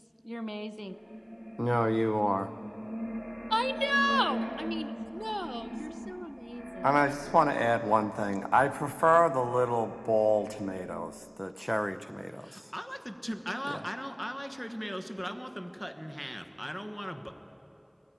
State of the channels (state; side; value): identical; both; correlation 1.00